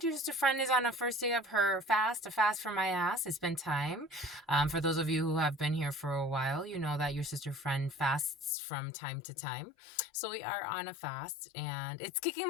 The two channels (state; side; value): drops out; right; at 8.6 s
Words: your sister friend is on a first day of her fast, a fast for my ass. It's been time. For those of you who have been here for a while, you know that your sister friend fasts from time to time. So we are on a fast and it's kicking